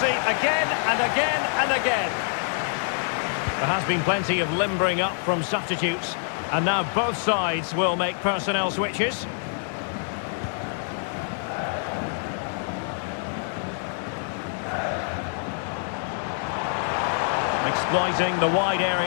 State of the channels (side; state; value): right; silent; 61 dB below the other